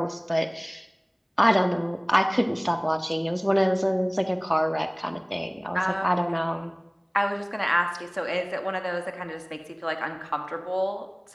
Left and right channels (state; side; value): identical; both; correlation 1.00